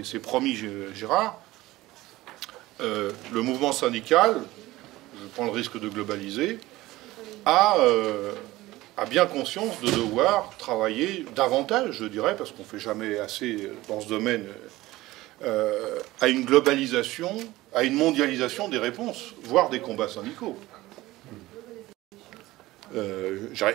promis, Gérard, le mouvement syndical, je prends le risque de globaliser, a bien conscience de devoir travailler davantage, je dirais, parce qu'on ne fait jamais assez dans ce domaine, à une globalisation, à une mondialisation des réponses, voire des combats syndicaux.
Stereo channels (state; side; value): quieter; left; 17.9 dB